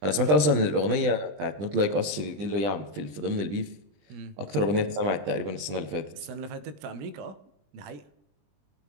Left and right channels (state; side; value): late; left; 20 ms